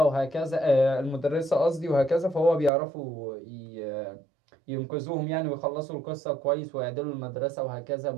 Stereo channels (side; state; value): left; drops out; at 2.7 s